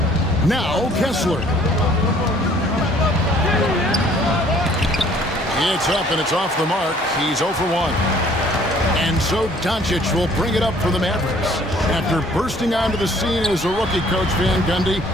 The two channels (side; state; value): both; normal; correlation 0.58